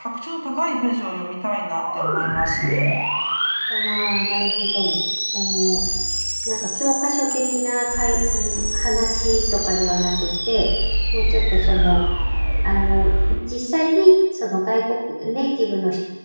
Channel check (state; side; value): inverted; both; correlation -1.00